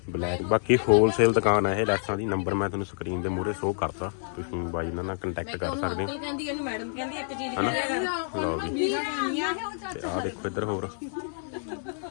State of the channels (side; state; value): right; silent; digital silence